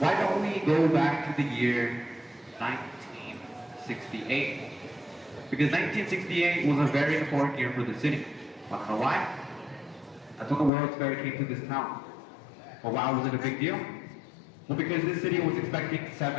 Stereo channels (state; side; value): drops out; right; at 10.7 s